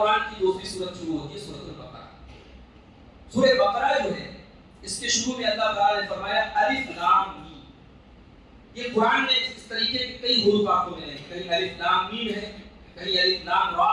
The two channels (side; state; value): both; identical; correlation 1.00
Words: کی دوسری سورت شروع ہوتی ہے، سورۃ البقرہ۔ سورہ بقرہ جو ہے اس کے شروع میں اللہ تعالیٰ نے فرمایا الف لام میم۔ یہ قرآن میں اس طریقے کے کئی حروف آپ کو ملیں گے، کہیں الف لام میم ہے، کہیں الف لام را